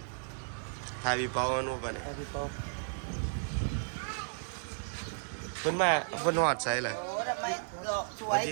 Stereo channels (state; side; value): silent; left; digital silence